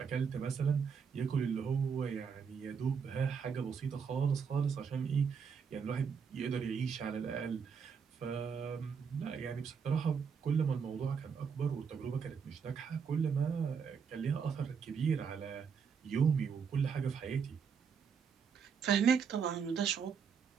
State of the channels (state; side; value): quieter; left; 6.4 dB